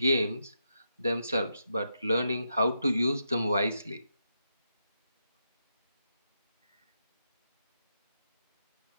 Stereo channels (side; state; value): both; inverted; correlation -0.84